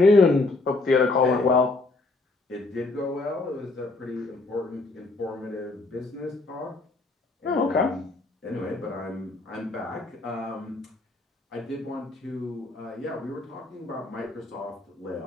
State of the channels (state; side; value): quieter; right; 3.3 dB